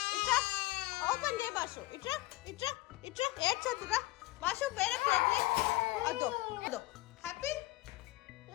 ఇట్రా ఓపెన్ చేయ బాషు. ఇట్రా ఇట్రా ఇట్రా. ఏడ్చొద్దురా బాషు, వేరే ప్లేట్. అదో అదో. Happy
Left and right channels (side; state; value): right; quieter; 19.1 dB